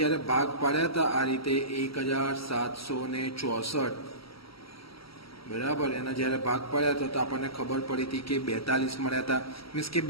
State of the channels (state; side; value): late; right; 0.75 ms